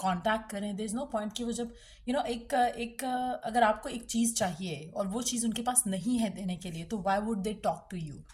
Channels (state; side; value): identical; both; correlation 1.00